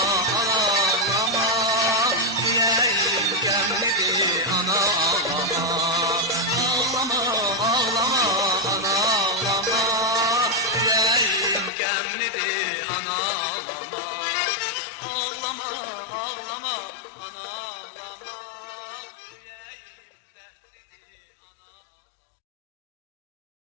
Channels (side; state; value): right; drops out; at 11.7 s